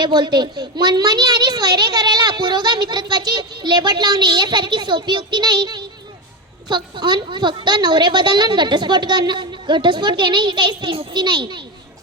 बोलते. मनमानी आणि स्वैरे करायला पुरोगा मित्रत्वाची लेबट लावणे यासारखी सोपी युक्ती नाही. फक्त नवरे बदलणं घटस्फोट घेणे ही काही स्त्रीमुक्ती नाही.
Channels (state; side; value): normal; both; correlation 0.16